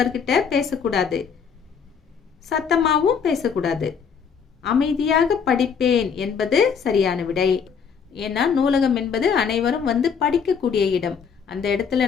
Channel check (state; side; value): quieter; right; 6.6 dB